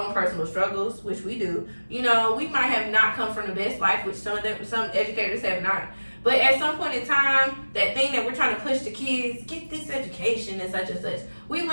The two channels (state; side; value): inverted; both; correlation -1.00